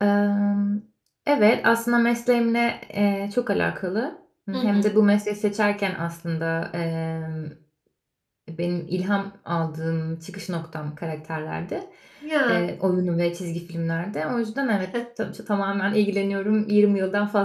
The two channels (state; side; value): identical; both; correlation 1.00